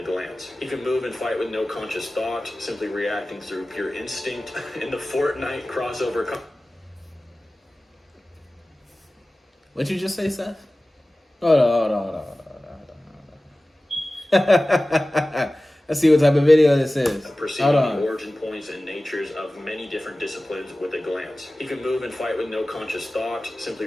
glance. He can move and fight with no conscious thought, simply reacting through pure instinct. In the Fortnite crossover... What'd you just say, Seth? Hold on. Let's see what type of video this is. Perceiving the origin points and natures of many different disciplines with a glance. He can move and fight with no conscious thought, simply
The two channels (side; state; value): both; normal; correlation 0.97